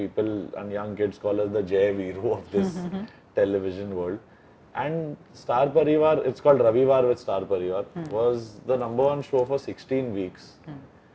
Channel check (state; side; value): identical; both; correlation 1.00